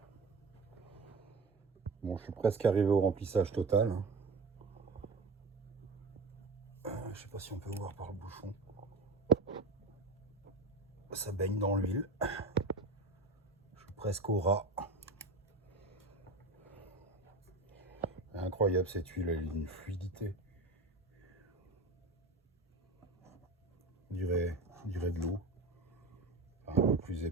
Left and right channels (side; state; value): left; quieter; 3.4 dB